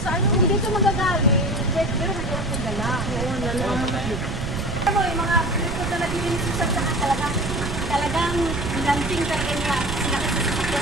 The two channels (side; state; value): right; noise; rumble, 4 dB below the sound